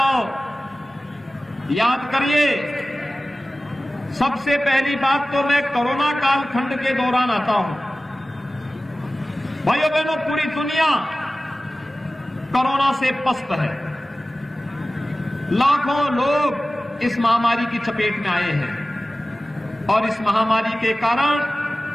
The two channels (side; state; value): both; normal; correlation 0.97